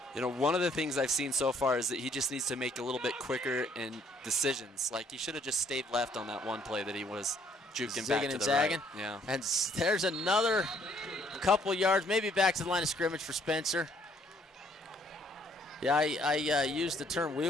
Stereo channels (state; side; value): normal; both; correlation 0.64